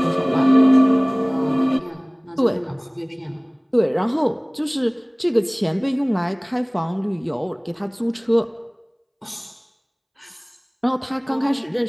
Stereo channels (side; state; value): both; identical; correlation 1.00